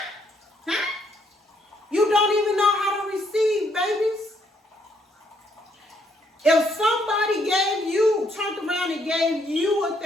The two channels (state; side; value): normal; both; correlation 0.71